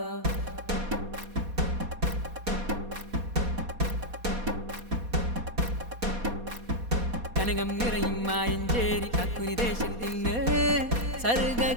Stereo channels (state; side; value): late; left; 4.2 ms